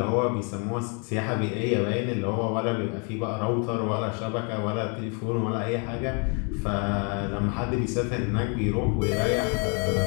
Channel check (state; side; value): quieter; right; 36.8 dB